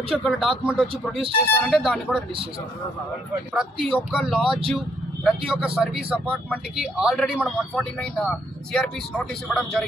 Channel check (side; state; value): both; normal; correlation 0.70